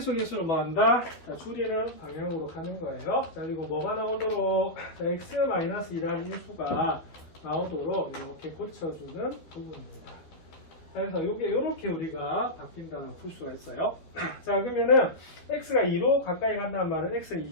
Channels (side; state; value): right; late; 12 ms